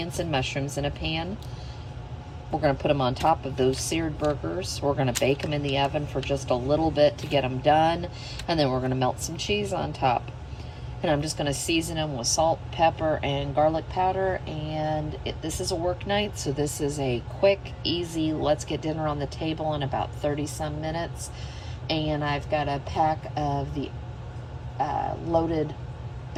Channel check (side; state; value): both; identical; correlation 1.00